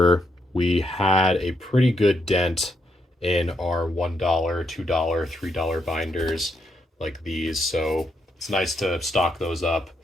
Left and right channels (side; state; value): both; normal; correlation 0.78